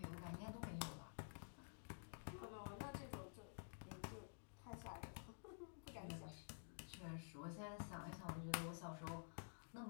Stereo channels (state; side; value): silent; right; digital silence